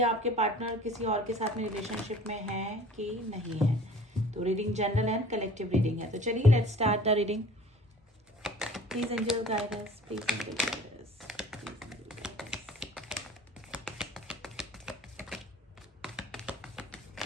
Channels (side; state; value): both; normal; correlation 0.47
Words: आपके पार्टनर किसी और के साथ में रिलेशनशिप में है कि नहीं है। तो reading general and collective reading है। तो चलिए, let's start the reading. Please angel guide us, please angel guide us, please angel guide us.